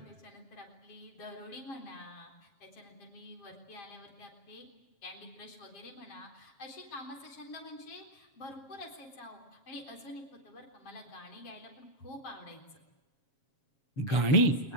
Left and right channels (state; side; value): late; right; 7.4 ms